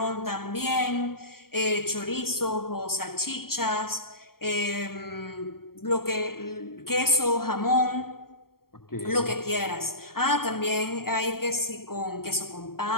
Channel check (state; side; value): late; right; 0.93 ms